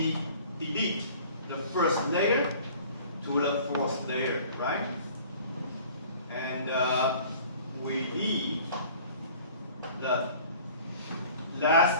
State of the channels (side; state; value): both; inverted; correlation -0.48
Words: delete the first layer to the fourth layer, right? And we leave the